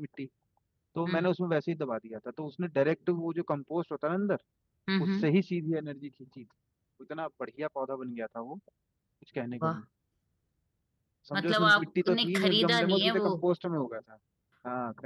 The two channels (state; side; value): identical; both; correlation 1.00